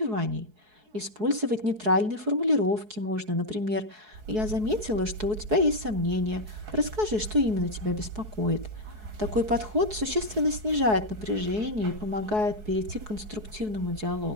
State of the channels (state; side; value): late; left; 4.7 ms